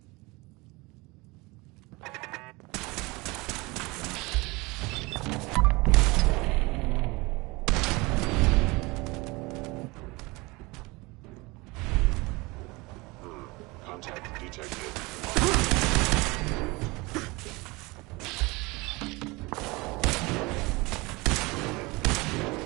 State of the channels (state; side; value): quieter; left; 24.2 dB